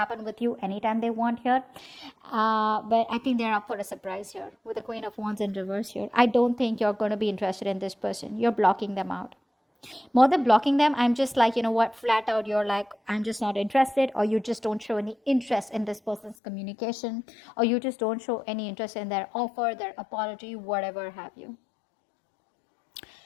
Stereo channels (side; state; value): right; drops out; at 16.4 s